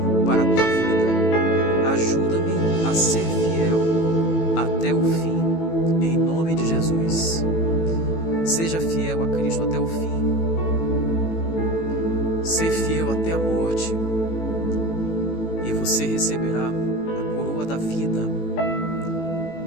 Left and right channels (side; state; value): right; late; 18 ms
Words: para a tua vida. Ajuda-me a ser fiel até o fim, em nome de Jesus. Seja fiel a Cristo até o fim. Ser fiel até a morte. E você receberá a coroa da vida.